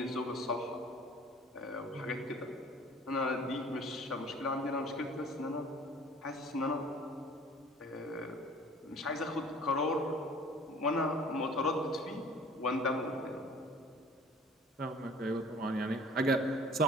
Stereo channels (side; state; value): both; normal; correlation 0.49